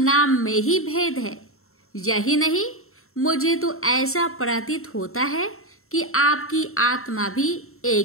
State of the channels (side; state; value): right; late; 0.62 ms